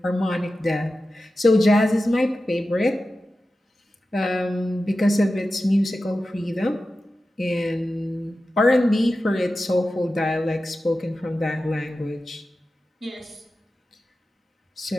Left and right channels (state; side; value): normal; both; correlation 0.93